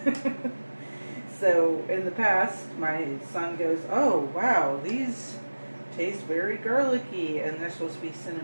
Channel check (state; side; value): inverted; both; correlation -1.00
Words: So in the past, my son goes, "Oh wow, these taste very garlicky," and they're supposed to be